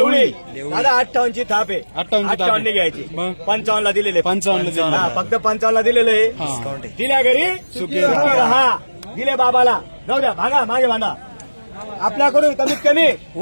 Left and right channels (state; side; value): inverted; both; correlation -1.00